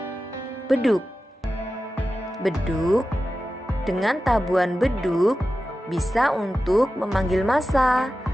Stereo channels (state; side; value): normal; both; correlation 0.93